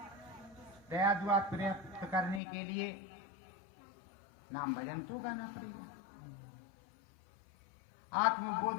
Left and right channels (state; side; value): drops out; right; at 2.4 s